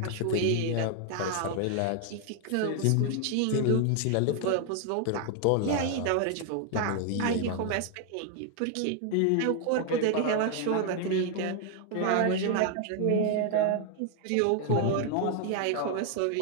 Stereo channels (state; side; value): different; both; correlation 0.00